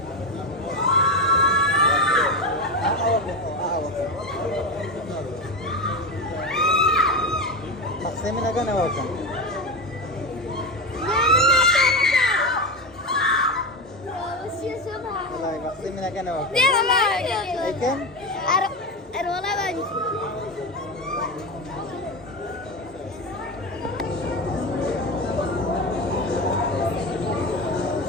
बक्से में लगा ना वो क्या बक्से में लगा ना वो लेकिन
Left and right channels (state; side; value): normal; both; correlation 0.19